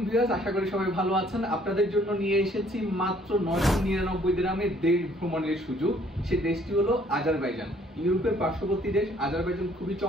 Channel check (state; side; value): normal; both; correlation 0.61